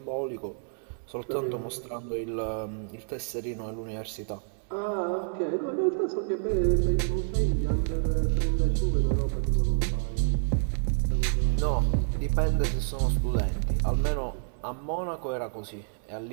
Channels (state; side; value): silent; left; digital silence